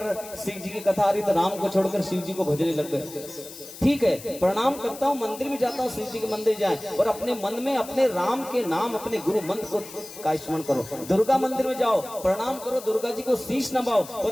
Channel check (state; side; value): noise; left; hiss, 15 dB below the sound